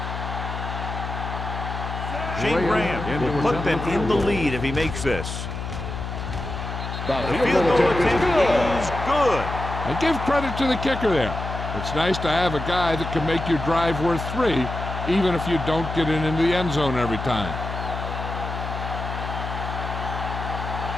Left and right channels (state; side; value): noise; left; hum, 6 dB below the sound